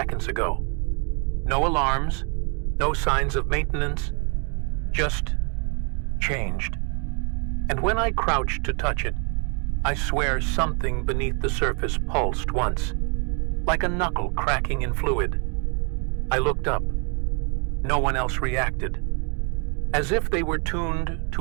ago. No alarms, no signs of maintenance, just changed. And when I crouched to touch it, I swear something beneath the surface pulsed once, like a knuckle cracking in fluid. I looked up. No one else reacted, as if they were tuned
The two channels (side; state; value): left; quieter; 36.5 dB